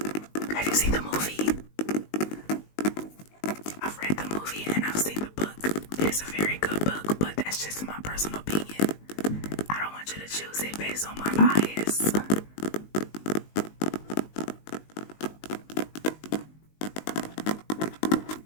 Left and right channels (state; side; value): late; right; 19 ms